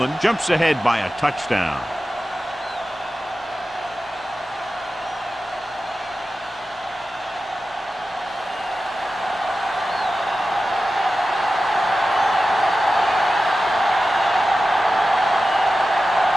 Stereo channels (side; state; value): both; normal; correlation 0.94